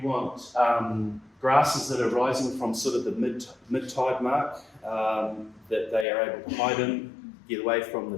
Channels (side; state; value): right; drops out; at 6.1 s